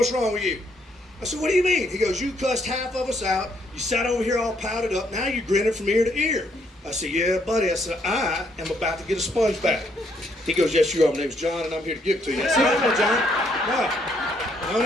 wrong with you? I said, what do you mean? He goes, you cussed half of us out. You sat over here all pouted up. Now you're grinning from ear to ear. I said, yeah, buddy. I said, I am about to get a sponge back. He goes, yes, you are. My name's John, and I'm here to give it to you. I said, no, John. No. Don't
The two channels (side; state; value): both; normal; correlation 0.71